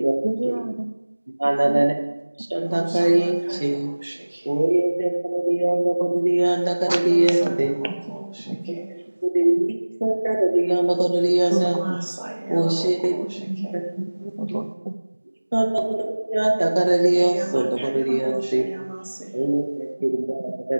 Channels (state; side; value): inverted; both; correlation -1.00